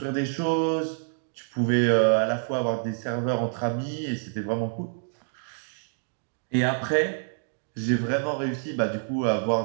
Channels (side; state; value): left; silent; 60 dB below the other